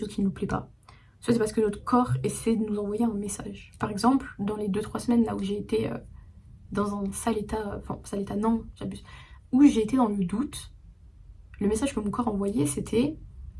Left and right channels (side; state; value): both; identical; correlation 1.00